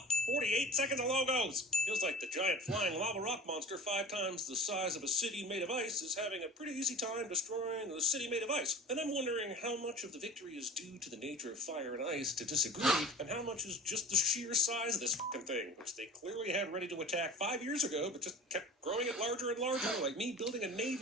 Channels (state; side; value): normal; both; correlation 0.40